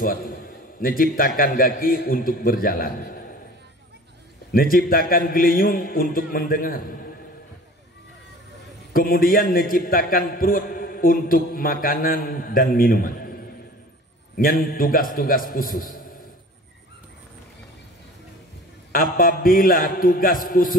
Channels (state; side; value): normal; both; correlation 0.44